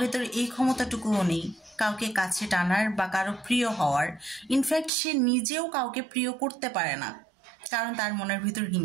এই ক্ষমতাটুকুও নেই কাউকে কাছে টানার বা কারো প্রিয় হওয়ার। ইনফ্যাক্ট সে নিজেও কাউকে প্রিয় করতে পারে না, কারণ তার মনের ভিতর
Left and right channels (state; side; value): drops out; left; at 4.9 s